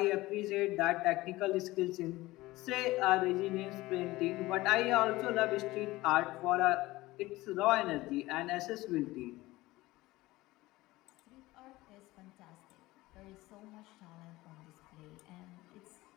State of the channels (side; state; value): right; quieter; 18.9 dB